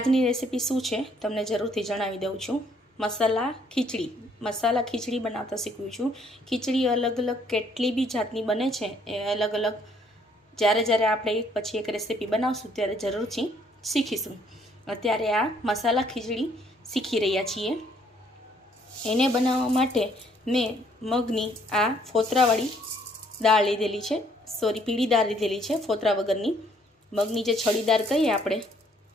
રેસીપી શું છે તમને જરૂરથી જણાવી દઉં છું। मसाला खीचड़ी बनाता शीखव्યું છું। खीचड़ी अलग अलग કેટલી બી જાતની બને છે એ અલગ અલગ જ્યારે જ્યારે આપણે એક પછી એક રેસીપી બનાવશું ત્યારે જરૂરથી શીખીશું। અત્યારે આ મસાલા ખીચડી શીખી રહ્યા છીએ। એને બનાવવા માટે મેં મગની આ ફોતરાવાળી દાળ લીધેલી છે, સોરી પીળી દાળ લીધેલી છે, ફોતરા વગરની। મગની જે છડીદાર કહીએ આપણે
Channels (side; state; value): both; normal; correlation 0.65